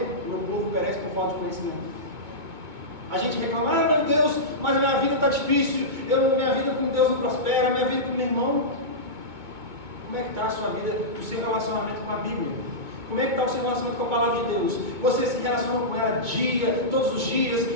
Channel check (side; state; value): left; late; 2.2 ms